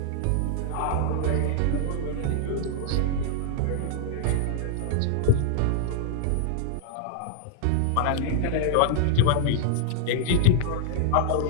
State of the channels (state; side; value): different; both; correlation -0.01